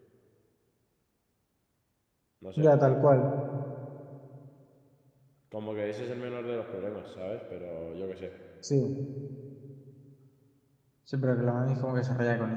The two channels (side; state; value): both; identical; correlation 1.00